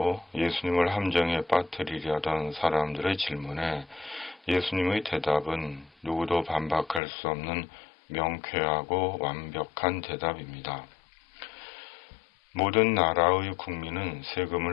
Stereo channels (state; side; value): drops out; right; at 7.0 s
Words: 예수님을 함정에 빠뜨리려던 사람들의 질문에 예수님의 대답은 누구도 반박할 수 없는 명쾌하고 완벽한 대답입니다. 모든 나라의 국민은